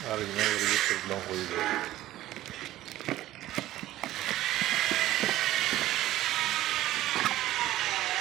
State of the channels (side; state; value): left; quieter; 14.9 dB